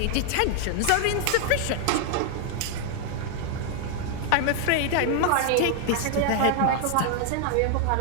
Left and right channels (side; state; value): both; different; correlation 0.00